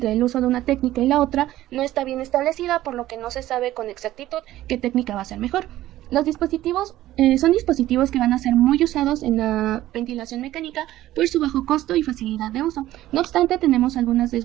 el uso de una técnica y la otra no está bien establecida, por lo que no se sabe con exactitud qué técnica va a ser mejor. Los dispositivos son dispositivos que van a ser muy usados en la ventilación mecánica por su bajo costo y facilidad de uso. No obstante, tenemos algunas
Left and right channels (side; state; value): left; quieter; 14.7 dB